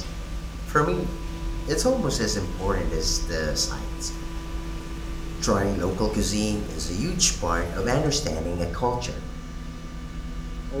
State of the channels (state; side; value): identical; both; correlation 1.00